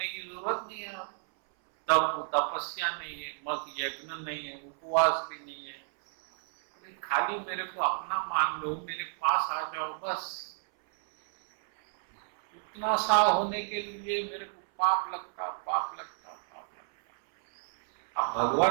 की जरूरत नहीं है। तप तपस्या नहीं है, मग यज्ञ नहीं है, उपवास भी नहीं है। अरे खाली मेरे को अपना मान लो, मेरे पास आ जाओ बस। उतना सा होने के लिए मेरे को पाप लगता, पाप लगता, पाप लगता। आप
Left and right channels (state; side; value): silent; left; 57 dB below the other